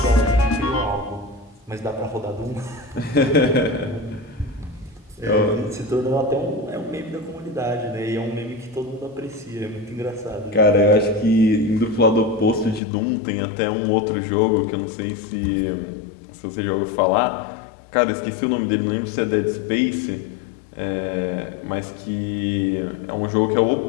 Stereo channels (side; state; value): right; drops out; at 12.8 s